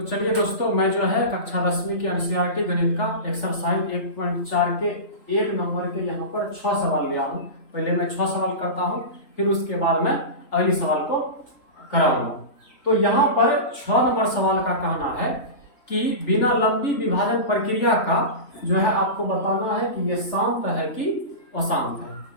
चलिए दोस्तों, मैं जो है कक्षा 10वीं की एनसीईआरटी गणित का एक्सरसाइज 1.4 के 1 नंबर के यहाँ पर 6 सवाल लिया हूँ। पहले मैं 6 सवाल करता हूँ, फिर उसके बाद मैं अगली सवाल को कराऊंगा। तो यहाँ पर 6 नंबर सवाल का कहना है कि बिना लंबी विभाजन प्रक्रिया का जो है आपको बताना है कि ये शांत है कि अशांत है।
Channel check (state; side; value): late; right; 3.5 ms